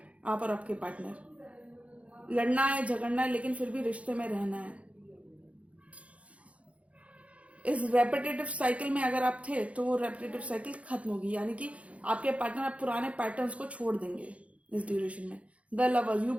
आप और आपके पार्टनर। लड़ना है, झगड़ना है, लेकिन फिर भी रिश्ते में रहना है। इस रेपिटेटिव साइकिल में अगर आप थे तो वो रेपिटेटिव साइकिल खत्म होगी, यानी कि आपके पार्टनर आप पुराने पैटर्न्स को छोड़ देंगे इस ड्यूरेशन में। The lovers, you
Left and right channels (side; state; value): left; late; 0.064 ms